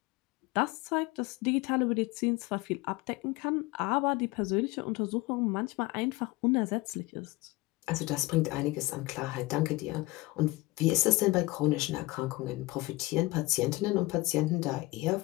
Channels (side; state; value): right; quieter; 21.2 dB